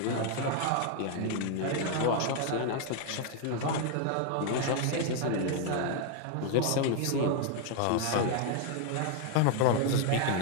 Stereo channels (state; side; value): different; both; correlation 0.00